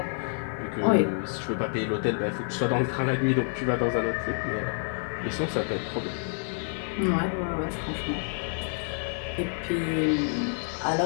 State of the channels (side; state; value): right; silent; 59 dB below the other